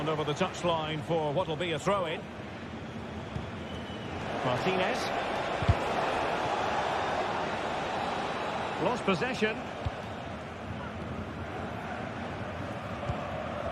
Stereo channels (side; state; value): both; identical; correlation 1.00